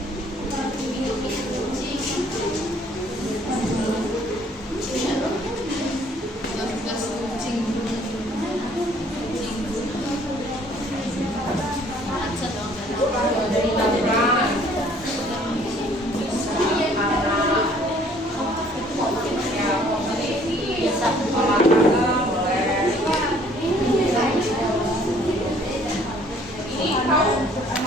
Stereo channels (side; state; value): both; normal; correlation 0.59